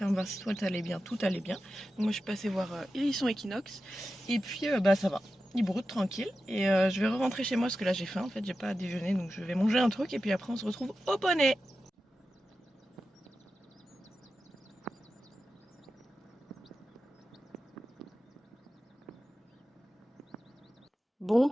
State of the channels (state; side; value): normal; both; correlation 0.92